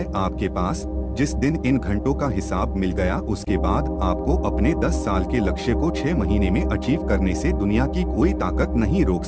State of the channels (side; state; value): both; identical; correlation 1.00